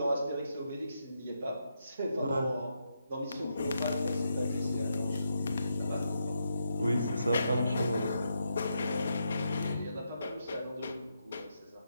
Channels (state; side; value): inverted; both; correlation -0.82